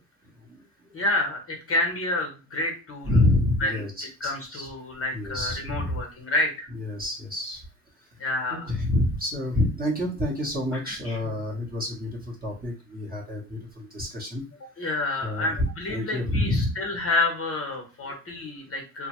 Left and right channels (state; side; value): normal; both; correlation 0.41